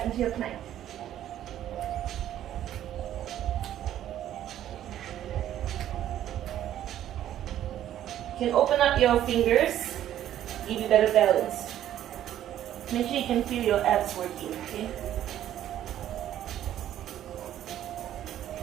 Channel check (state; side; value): quieter; left; 11.7 dB